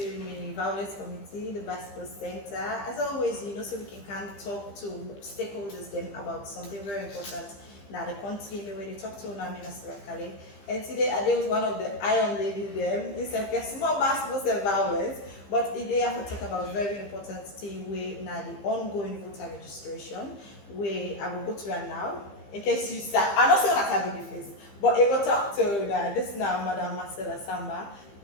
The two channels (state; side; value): late; right; 15 ms